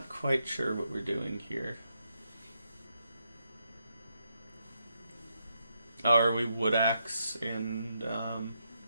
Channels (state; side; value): inverted; both; correlation -0.80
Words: quite sure what we're doing here. Oh, are we wood axe and